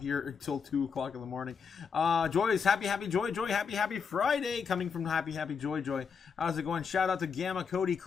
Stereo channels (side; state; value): right; quieter; 6.1 dB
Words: until 2 o'clock in the morning. Joyce, happy Joy, happy Friday, coming from happy Joy. How's it going? Shout out to Gamma, Cody,